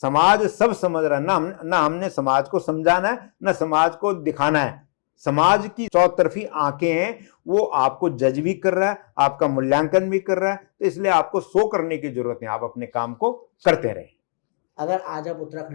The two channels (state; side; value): silent; right; digital silence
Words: समाज सब समझ रहा है, ना हमने समाज को समझाना है, ना समाज को दिखाना है। समाज की चौतरफी आंखें हैं, वो आपको जज भी कर रहा है, आपका मूल्यांकन भी कर रहा है, तो इसलिए आपको सो करने की जरूरत नहीं, आप अपने काम को करते रहे। अगर आज आप